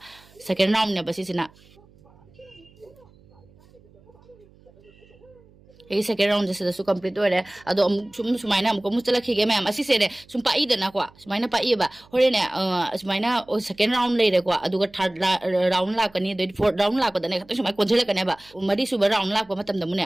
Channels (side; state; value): right; noise; hum, 28 dB below the sound